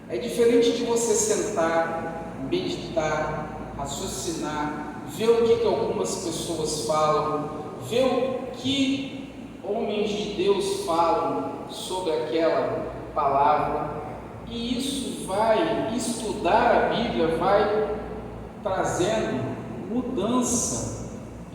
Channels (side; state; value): both; identical; correlation 1.00